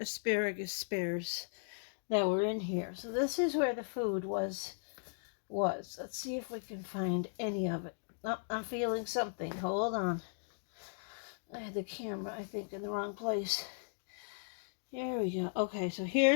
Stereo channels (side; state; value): right; silent; digital silence